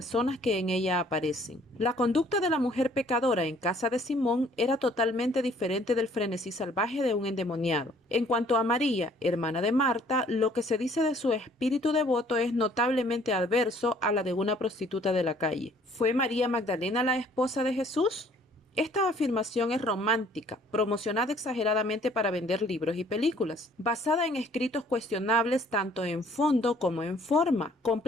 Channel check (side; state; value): both; normal; correlation 0.59